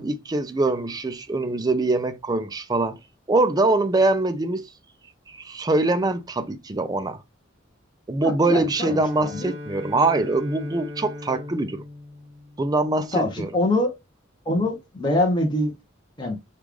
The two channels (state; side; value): normal; both; correlation 0.53